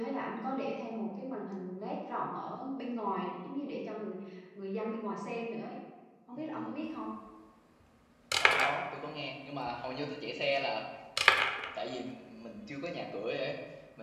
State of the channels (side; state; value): both; identical; correlation 1.00